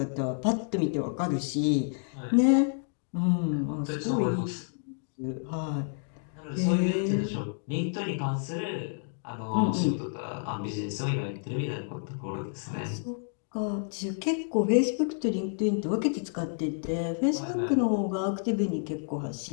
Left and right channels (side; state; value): right; silent; digital silence